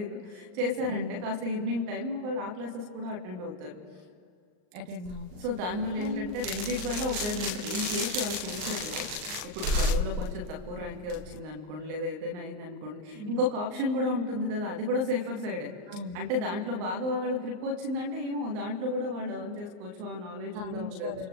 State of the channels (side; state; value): left; late; 39 ms